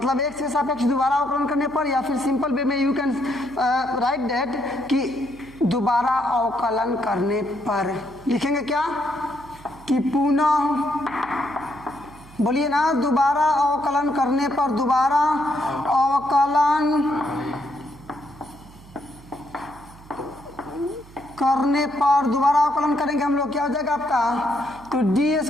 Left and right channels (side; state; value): right; noise; hum, 22 dB below the sound